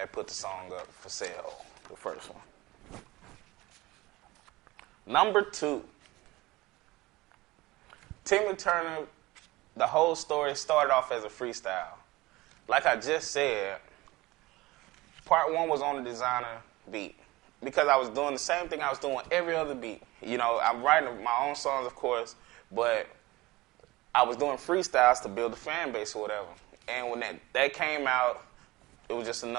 put the song up for sale, the first one. Number 2. Timmy Turner, the whole story started off as a freestyle. Like I just said, part 1 was on the designer beat. Because I was doing the same thing I was doing every other beat. I'm writing my own songs, of course, but I was doing freestyles to build a fan base or whatever. And when that came out, it was just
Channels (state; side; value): quieter; left; 20.2 dB